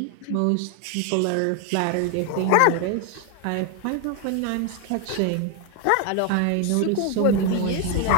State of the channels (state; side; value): different; both; correlation 0.01